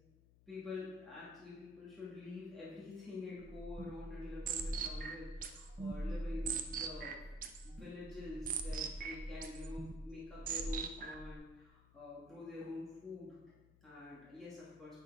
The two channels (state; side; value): noise; left; hum, 23 dB below the sound